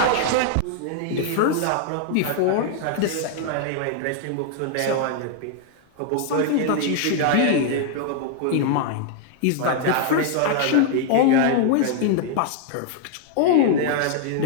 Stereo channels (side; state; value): both; different; correlation 0.00